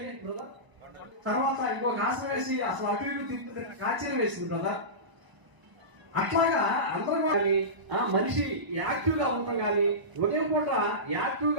బ్రదర్ తర్వాత ఇంకొక ఆసనం వేసి అసలు అటు ఇటు కాచీలు వేసింది బ్రదర్. అట్లాగా అందరూ కానీ మనిషి యాక్టివ్ గా ఉంటాం కానీ ఉదయం పూట యాక్టివ్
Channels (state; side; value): late; left; 1.0 ms